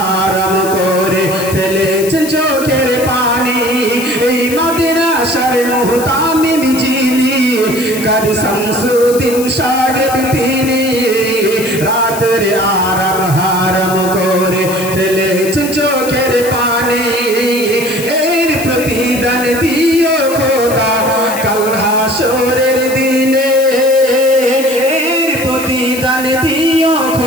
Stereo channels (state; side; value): noise; left; hiss, 10 dB below the sound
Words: করে ফেলেছেন চোখের পানি এই মাদ্রাসার মুহতামিল যিনি কাজী শামসুদ্দিন সাহেব তিনি রাতের আরাম হারাম করে ফেলেছেন চোখের পানি এর প্রতিদান দিও খোদা কাল হাসরের দিনে এর প্রতিদান দিও